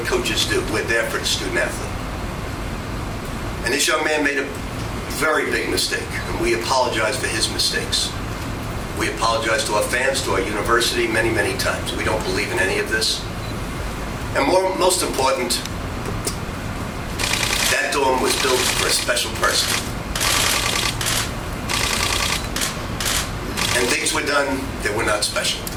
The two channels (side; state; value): both; identical; correlation 1.00